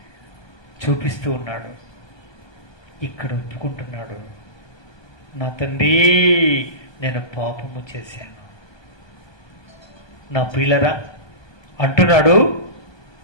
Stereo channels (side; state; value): right; late; 1.2 ms